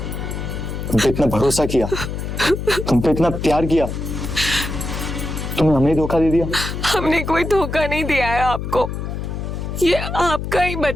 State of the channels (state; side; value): noise; left; hum, 5 dB below the sound